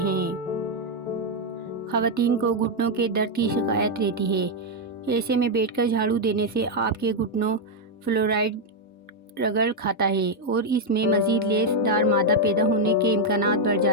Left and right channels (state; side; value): normal; both; correlation 0.01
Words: خواتین کو گھٹنوں کے درد کی شکایت رہتی ہے، ایسے میں بیٹھ کر جھاڑو دینے سے آپ کے گھٹنوں فلورائڈ رگڑ کھاتا ہے اور اس میں مزید لیس دار مادہ پیدا ہونے کے امکانات بڑھ